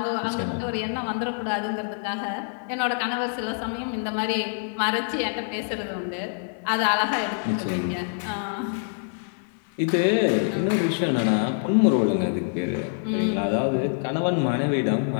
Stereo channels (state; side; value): silent; right; 59 dB below the other